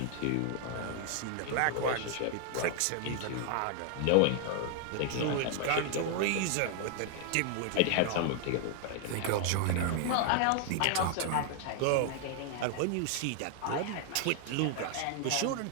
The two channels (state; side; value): different; both; correlation 0.00